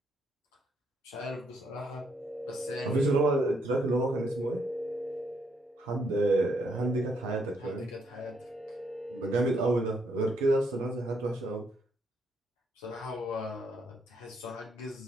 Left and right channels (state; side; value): normal; both; correlation 0.74